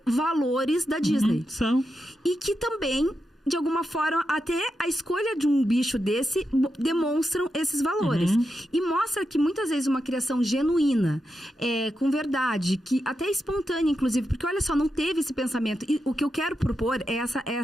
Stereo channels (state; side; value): normal; both; correlation 0.87